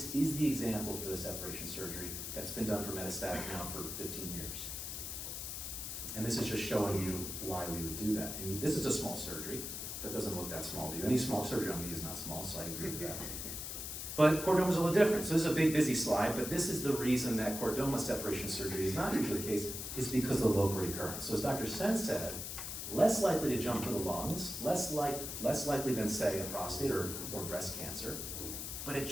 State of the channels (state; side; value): noise; left; hiss, 6 dB below the sound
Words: is the example for the separation surgery that's been done for metastatic now for 15 years. And this is just showing you why we would do that. And this is a small surgery, but it doesn't look that small to you. Any small surgery on me is not small, so I agree with that. But chordoma is a little different. So this is a big, busy slide, but this is the reason that chordoma separation surgery is not usually the case, is because of the local recurrence. So as Dr. Sen said, less likely to jump to the lungs, less likely than, say, a prostate or breast cancer, but it